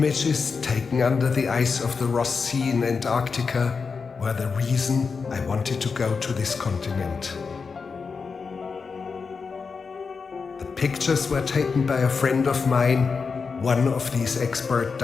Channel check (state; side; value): quieter; right; 5.1 dB